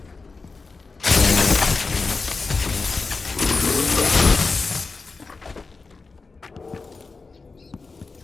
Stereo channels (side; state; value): right; quieter; 4.1 dB